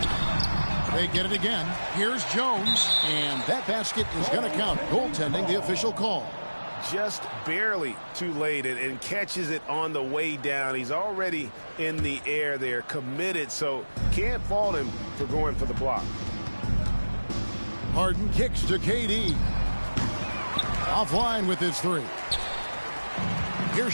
They get it again. Here's Jones, and that basket is going to count. Goaltending, the official call. Just barely too late and catches it on the way down. He's already in the air there, committed, so can't fault him for going for the block. Harden kicks to KD. Offline with his three. Here's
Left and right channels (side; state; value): both; inverted; correlation -1.00